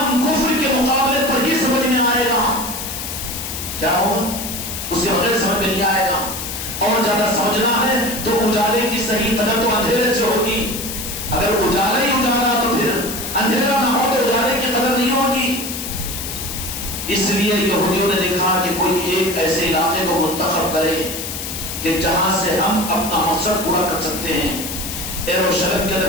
کفر کے مقابلے پر ہی سمجھ میں آئے گا. کیا ہوگا؟ اس کے بغیر سمجھ میں نہیں آئے گا. اور زیادہ سمجھنا ہے تو اجالے کی صحیح قدر تو اندھیرے سے ہوگی. اگر اجالا ہی اجالا تو پھر اندھیرا نہ ہو تو اجالے کی قدر نہیں ہوگی. اس لیے یہودیوں نے دیکھا کہ کوئی ایک ایسے علاقے کو منتخب کرے کہ جہاں سے ہم اپنا مقصد پورا کر سکتے ہیں. یروشلم کے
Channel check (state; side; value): noise; left; hiss, 6 dB below the sound